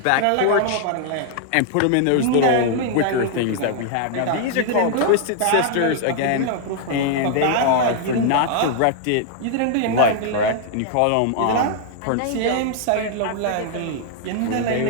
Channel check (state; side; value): different; both; correlation -0.01